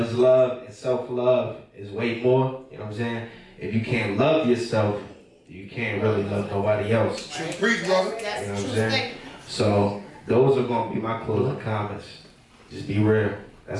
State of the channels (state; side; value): identical; both; correlation 1.00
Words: is love and self-love is way more. You know what I'm saying? If you can't love yourself, you can't really love nobody else. Preach, brother. You know what I'm saying? So those are going to be my closing comments. Just be real.